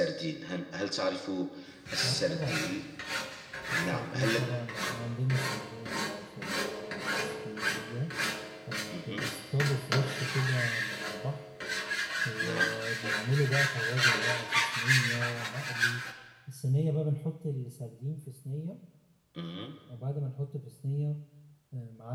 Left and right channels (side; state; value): both; identical; correlation 1.00